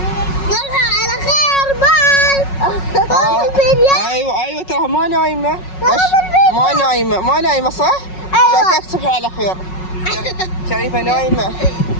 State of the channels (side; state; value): right; late; 5.4 ms